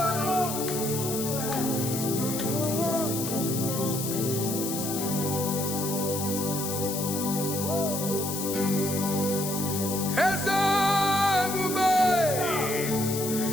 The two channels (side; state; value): left; noise; hiss, 4 dB below the sound